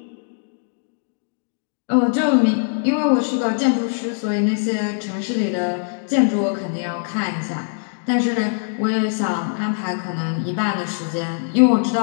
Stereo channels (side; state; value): right; silent; digital silence